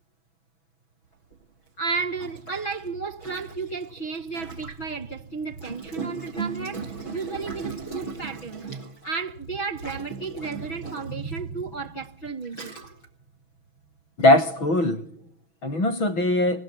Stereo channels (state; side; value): late; right; 6.1 ms